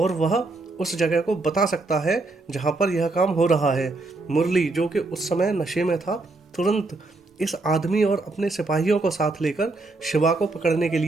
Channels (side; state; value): left; quieter; 3.2 dB